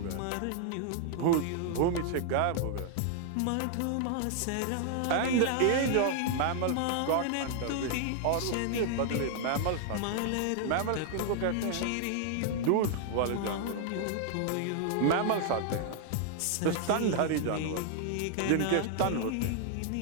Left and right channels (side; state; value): both; different; correlation 0.00